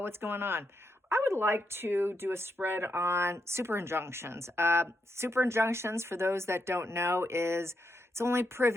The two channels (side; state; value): both; normal; correlation 0.82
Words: going on? I would like to do a spread on super injunctions. Super injunctions, for those that don't know, is it's only